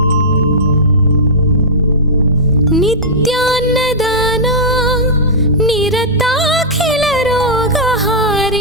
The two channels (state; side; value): normal; both; correlation -0.10